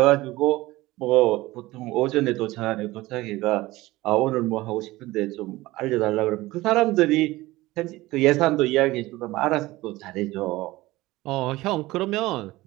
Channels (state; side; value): quieter; left; 18.9 dB